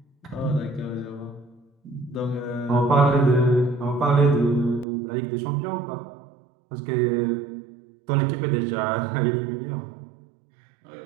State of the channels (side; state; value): left; drops out; at 4.9 s